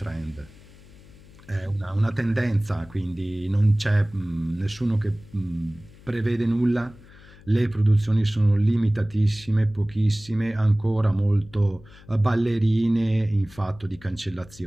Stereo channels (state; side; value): noise; left; hum, 23 dB below the sound